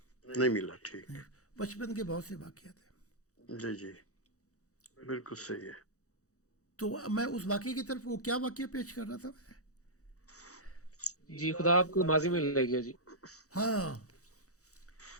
نہیں ملا. ٹھیک. بچپن کے بہت سے واقعات ہیں. جی جی بالکل صحیح ہے. تو میں اس واقعے کی طرف، وہ کیا واقعہ پیش کر رہا تھا میں؟ جی خدا آپ کو ماضی میں لے گیا جی. ہاں.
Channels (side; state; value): right; late; 0.65 ms